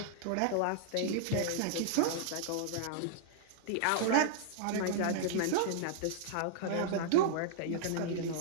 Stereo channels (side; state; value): both; different; correlation -0.01